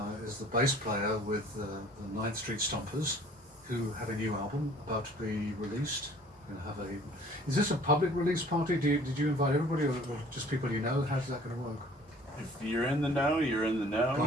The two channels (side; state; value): both; normal; correlation 0.52